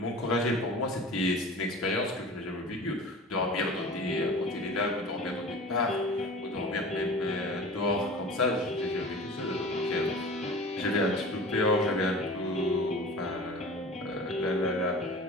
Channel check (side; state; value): both; normal; correlation 0.38